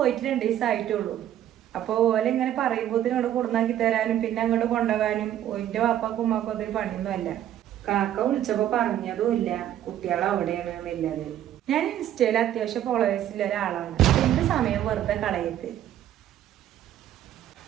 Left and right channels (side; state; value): left; quieter; 11.6 dB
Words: 2 ദിവസമായിട്ടുള്ളൂ. അപ്പൊ ഓലെ ഇങ്ങനെ പറയുമ്പോ ഇവിടെ കൊടുന്നാക്കി തരാനും പിന്നെ അങ്ങോട്ട് കൊണ്ടുപോകാനും ഓന്റെ വാപ്പാക്കും ഉമ്മാക്കും അതൊരു പണിയൊന്നുമല്ല. കാക്ക വിളിച്ചപ്പോ പറഞ്ഞതും ഇല്ല കുട്ടികൾ അവിടെയാണ് എന്നുള്ളത്. ഞാൻ ഇൻസ്റ്റയിൽ അത്യാവശ്യം ഫോളോവേഴ്സിലുള്ള ഒരാളാണ്. എന്റെ സമയം വെറുതെ കളയത്ത്.